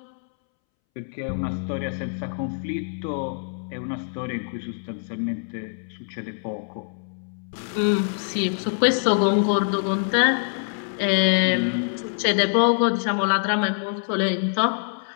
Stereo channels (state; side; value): silent; right; 62 dB below the other